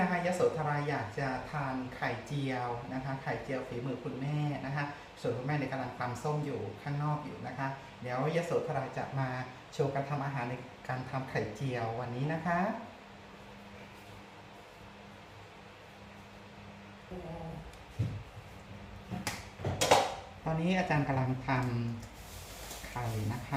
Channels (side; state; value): both; identical; correlation 1.00